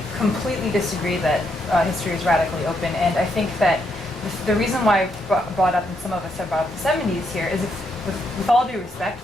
completely disagree that history is radically open, and I think that the reason why I brought up, and some of us have brought up the 70s here, is with all due respect,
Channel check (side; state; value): both; normal; correlation 0.78